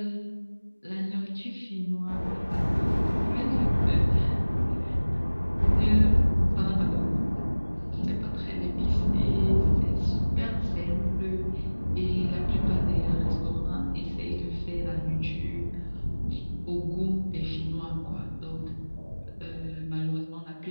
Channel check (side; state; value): both; inverted; correlation -1.00